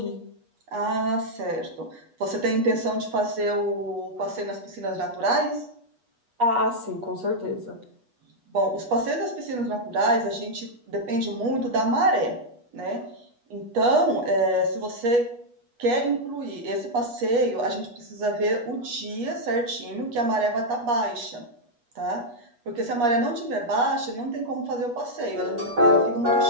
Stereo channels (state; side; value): late; left; 8.3 ms